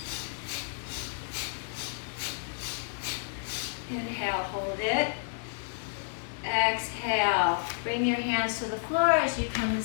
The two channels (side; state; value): right; silent; digital silence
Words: Inhale, hold it. Exhale, bring your hands to the floor as you come to